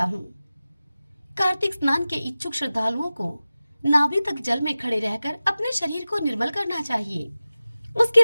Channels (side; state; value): both; inverted; correlation -0.96